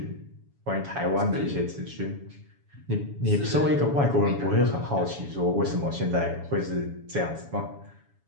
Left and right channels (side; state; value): left; late; 7.1 ms